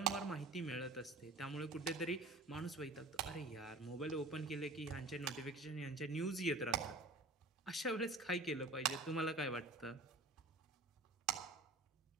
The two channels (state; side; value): quieter; left; 3.0 dB